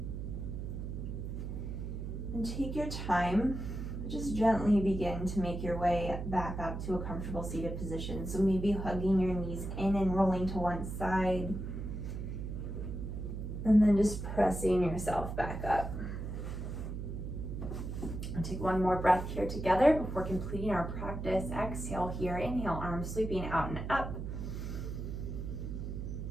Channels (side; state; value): right; noise; hum, 5 dB below the sound